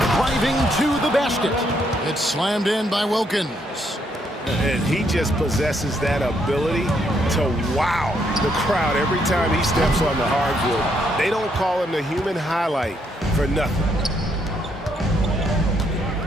to the basket. It's slammed in by Wilkins. And he just possesses that ability to wow the crowd every time he steps on the hardwood. They don't call him the human highlight for nothing.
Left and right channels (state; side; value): normal; both; correlation 0.74